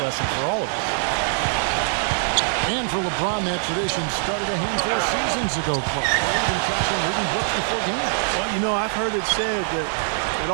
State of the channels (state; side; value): silent; left; digital silence